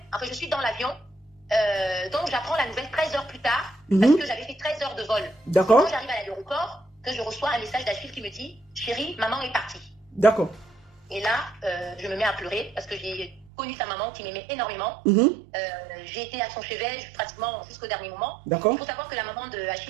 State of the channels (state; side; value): drops out; left; at 13.5 s